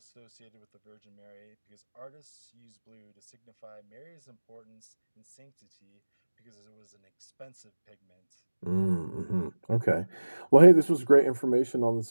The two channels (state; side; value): inverted; both; correlation -1.00